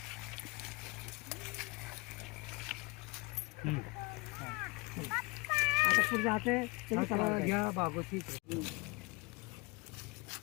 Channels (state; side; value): quieter; right; 26.0 dB